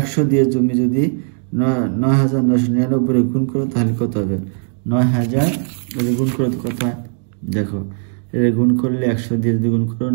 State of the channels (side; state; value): left; silent; 56 dB below the other